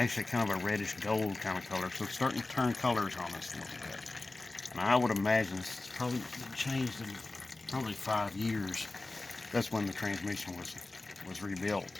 kind of a reddish gold kind of color. So it's starting to turn colors on us a little bit. And I would imagine it's probably changed in probably 5 years. That's when the transmission was rebuilt.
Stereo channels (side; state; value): right; quieter; 3.1 dB